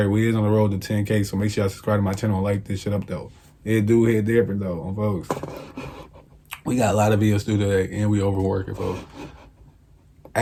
we is on the road to 10K, so make sure y'all subscribe to my channel and like this shit up though. It do hit different though, on folks. We got a lot of videos to do today, and we overworking, folks.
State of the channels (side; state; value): both; identical; correlation 1.00